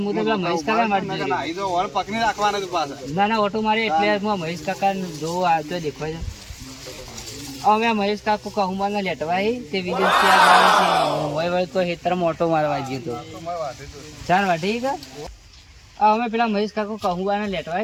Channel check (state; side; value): identical; both; correlation 1.00